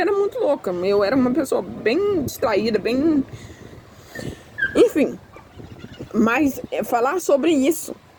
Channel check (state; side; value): identical; both; correlation 1.00